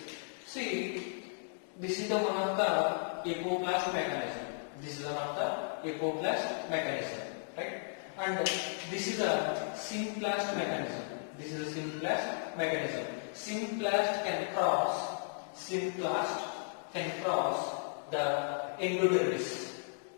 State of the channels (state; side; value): silent; right; digital silence